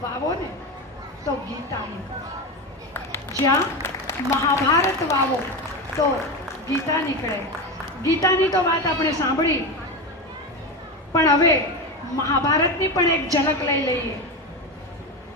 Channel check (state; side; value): normal; both; correlation 0.19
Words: વાવો ને તો ગીતા નીકળે. જ્યાં મહાભારત વાવો તો ગીતા નીકળે. ગીતાની તો વાત આપણે સાંભળી, પણ હવે મહાભારતની પણ એક ઝલક લઈ લઈએ.